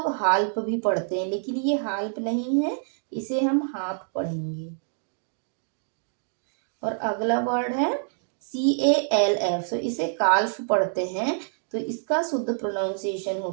हाल्प भी पढ़ते हैं, लेकिन ये हाल्प नहीं है, इसे हम हाफ पढ़ेंगे। और अगला वर्ड है CALF। तो इसे काल्फ पढ़ते हैं, तो इसका शुद्ध प्रोनाउंसिएशन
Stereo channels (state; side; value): silent; left; digital silence